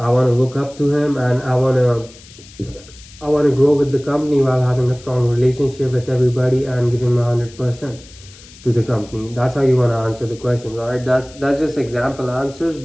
want to look up to him, and I want to grow with the company while having a strong relationship with everybody and giving my 100% to the company. That's how you want to answer the questions. All right, that's just example answers,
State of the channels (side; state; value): left; noise; hiss, 22 dB below the sound